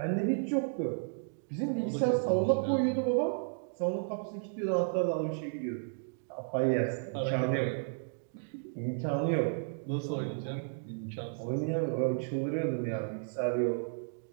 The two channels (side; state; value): left; silent; digital silence